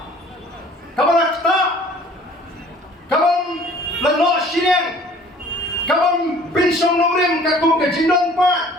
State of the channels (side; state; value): both; normal; correlation 0.52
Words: kabalak ta kabam lano shireng kabam pinsong nongrim kakum ke jindon pa